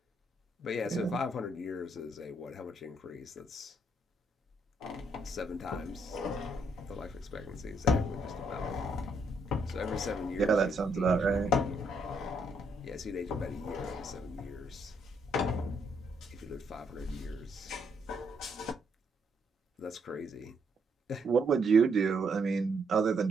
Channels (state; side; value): normal; both; correlation 0.74